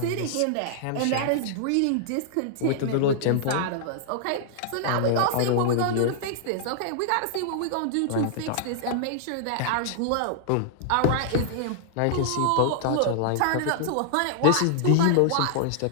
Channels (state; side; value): different; both; correlation -0.01